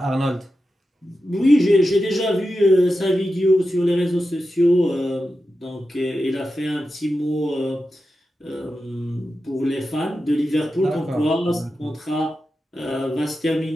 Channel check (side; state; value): both; normal; correlation 0.91